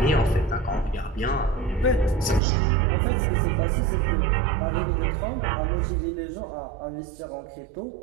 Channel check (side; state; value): left; drops out; at 2.4 s